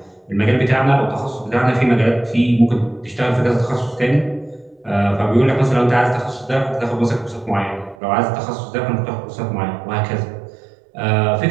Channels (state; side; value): drops out; left; at 8.0 s